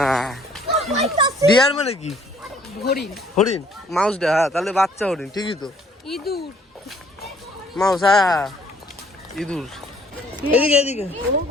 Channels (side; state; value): both; normal; correlation 0.60